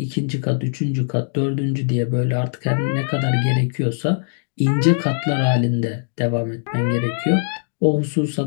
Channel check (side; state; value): right; silent; digital silence